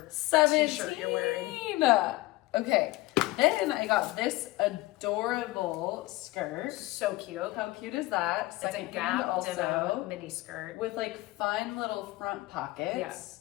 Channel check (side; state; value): right; quieter; 19.5 dB